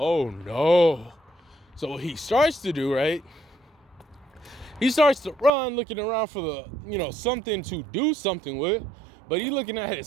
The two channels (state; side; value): drops out; left; at 5.5 s